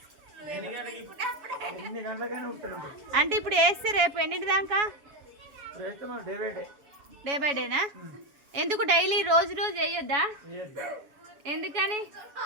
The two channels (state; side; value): late; left; 7.2 ms